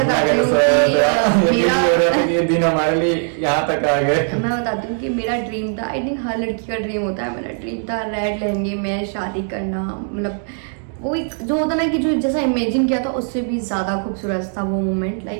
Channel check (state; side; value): silent; left; 57 dB below the other